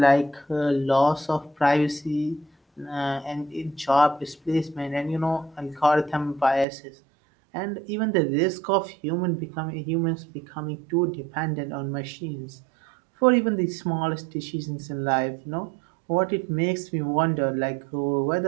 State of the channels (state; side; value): drops out; left; at 6.7 s